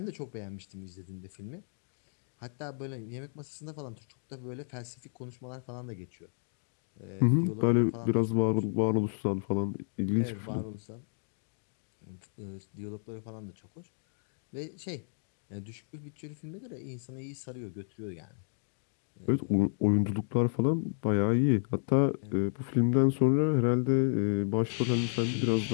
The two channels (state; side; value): silent; right; digital silence